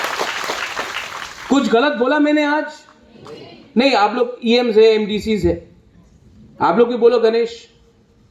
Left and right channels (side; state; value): both; identical; correlation 1.00